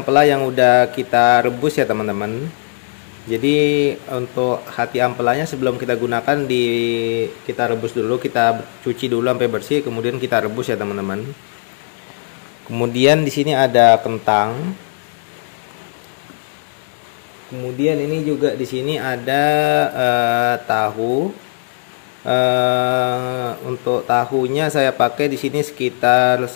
yang udah kita rebus ya teman-teman. Jadi untuk hati ampelanya sebelum kita gunakan kita rebus dulu, kita cuci dulu sampai bersih, kemudian kita rebus ya teman-teman. Kemudian di sini ada kentang. Kemudian ini juga di sini ada tahu. Untuk tahunya saya pakai di sini sekitar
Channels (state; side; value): silent; right; 67 dB below the other